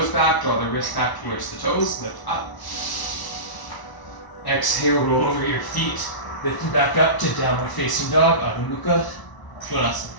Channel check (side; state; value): right; late; 1.0 ms